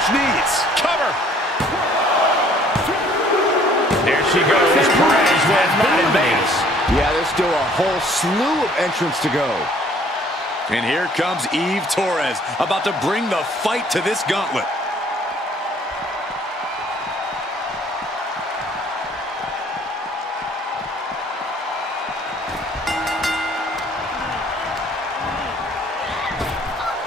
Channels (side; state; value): both; normal; correlation 0.58